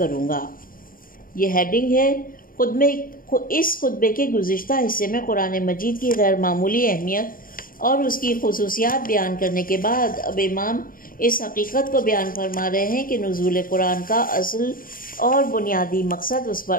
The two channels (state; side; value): late; right; 0.41 ms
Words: گا۔ یہ ہیڈنگ ہے۔ اس خطبے کے گزشتہ حصے میں قرآن مجید کی غیر معمولی اہمیت اور اس کی خصوصیات بیان کرنے کے بعد اب امام اس حقیقت کو بیان فرما رہے ہیں کہ نزول قرآن کا اصل اور بنیادی مقصد اس پر